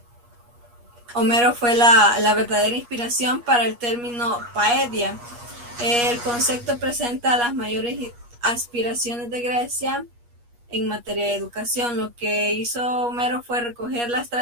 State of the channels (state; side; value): late; left; 8.4 ms